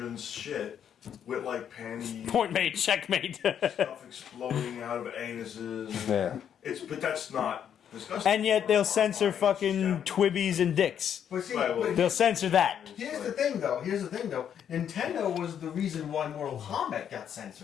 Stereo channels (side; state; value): right; quieter; 8.9 dB